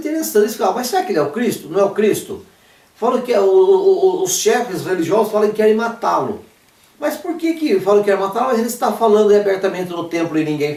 Mas será que ele é o Cristo? Não é o Cristo? Falam que os chefes religiosos falam que querem matá-lo. Mas por que falam que querem matá-lo? Mas ele está falando abertamente no templo e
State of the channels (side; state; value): both; identical; correlation 1.00